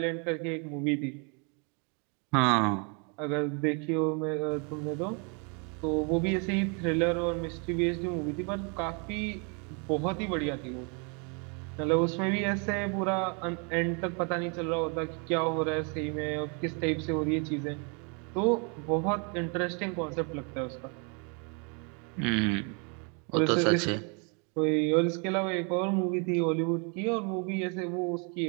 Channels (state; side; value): quieter; left; 35.6 dB